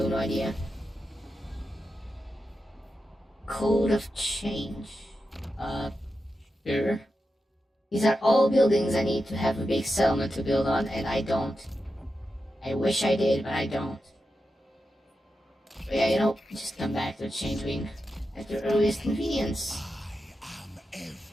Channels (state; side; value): normal; both; correlation 0.89